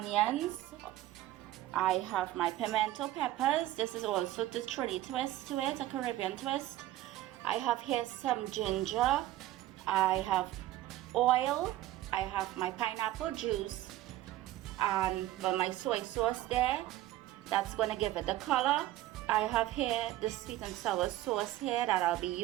I have my pimento peppers. This is also the Trini twist to it, a Caribbean twist. I have here some ginger. I have oil. I have my pineapple juice and my soy sauce there. That's going to give it the color. I have here the sweet and sour sauce here that I'll be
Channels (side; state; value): left; quieter; 15.0 dB